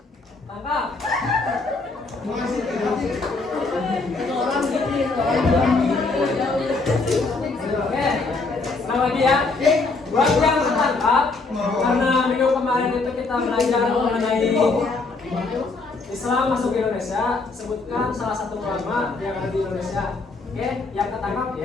Tangkap. Oke. Ulang lagi ya. Buat yang tertangkap, karena minggu kemarin itu kita belajar mengenai Islam masuk ke Indonesia, sebutkan salah satu ulama yang ada di Indonesia. Oke, yang ketangkap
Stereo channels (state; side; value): quieter; right; 3.8 dB